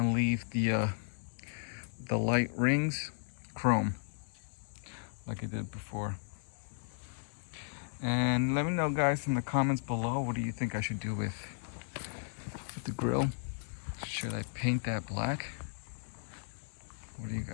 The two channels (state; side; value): silent; right; 54 dB below the other